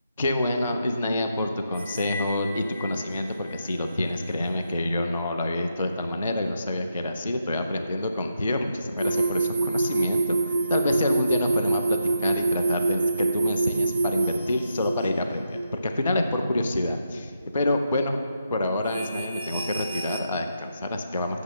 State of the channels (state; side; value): inverted; both; correlation -0.82